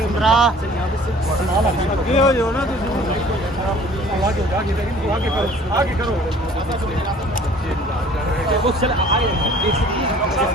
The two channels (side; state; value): both; normal; correlation 0.51